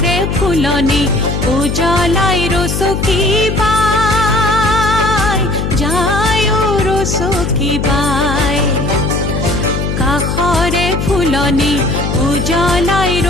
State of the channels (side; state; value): left; noise; hum, 2 dB below the sound